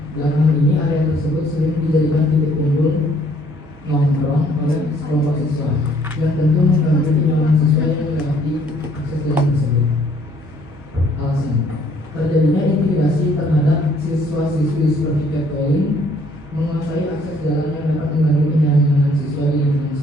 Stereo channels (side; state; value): right; noise; hum, 25 dB below the sound